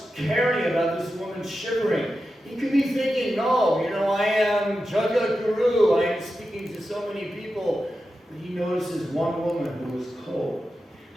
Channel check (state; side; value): normal; both; correlation 0.91